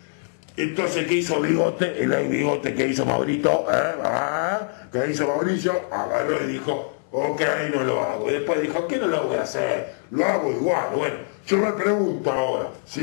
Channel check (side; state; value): right; silent; digital silence